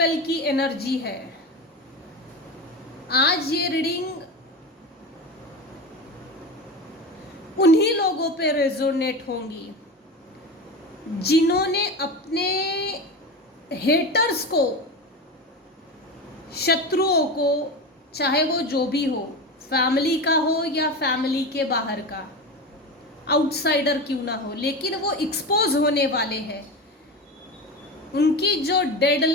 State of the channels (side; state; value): both; normal; correlation 0.24